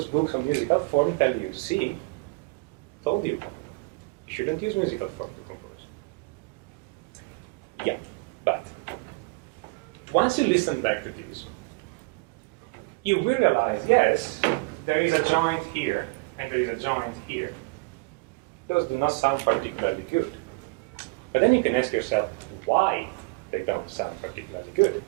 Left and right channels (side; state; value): left; quieter; 27.6 dB